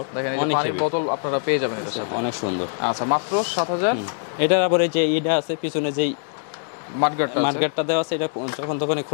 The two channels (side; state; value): right; silent; digital silence